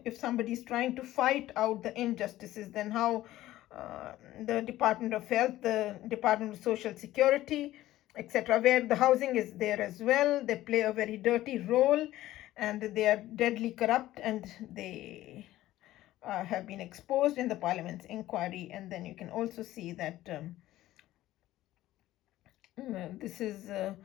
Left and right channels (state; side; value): quieter; right; 15.1 dB